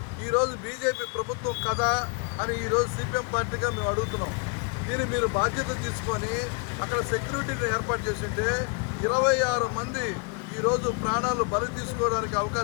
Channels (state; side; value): quieter; right; 35.0 dB